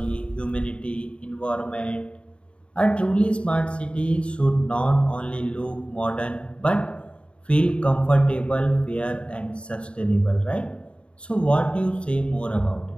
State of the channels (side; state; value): right; late; 0.057 ms